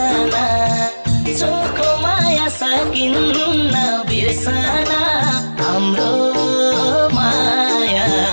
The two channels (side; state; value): both; inverted; correlation -1.00